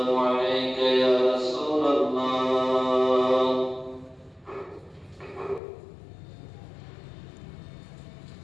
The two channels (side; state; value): right; drops out; at 5.6 s